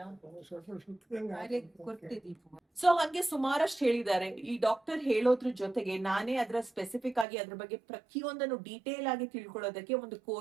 ಅರೆ ಕೊಡ್ತೆ ದೀಪ ಸೊ ಹಂಗೆ ಸುಮಾರಷ್ಟು ಹೇಳಿದ್ದಾರೆ. ಈ ಡಾಕ್ಟರ್ ಹೇಳೋದ್ರ ಜೊತೆಗೆ ನಾನೇ ಅದರ ಸ್ಪೆಸಿಫಿಕ್ ಆಗಿ ಅದ್ರ ಬಗ್ಗೆ ಪ್ರತಿಯೊಂದನ್ನು ಡೀಟೇಲ್ ಆಗಿ ತಿಳ್ಕೊಳ್ಳೋದಕ್ಕೆ ಒಂದು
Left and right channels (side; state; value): left; drops out; at 7.2 s